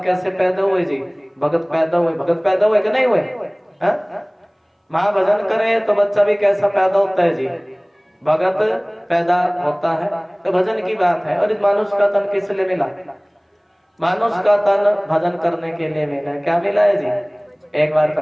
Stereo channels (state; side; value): identical; both; correlation 1.00